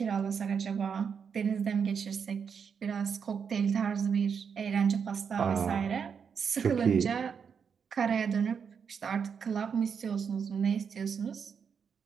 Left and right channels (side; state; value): left; quieter; 6.7 dB